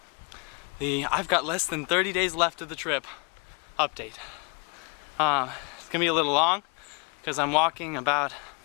the I've got less than 30 days left of the trip update. It's going to be a little long because I'm walking about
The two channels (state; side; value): quieter; right; 33.4 dB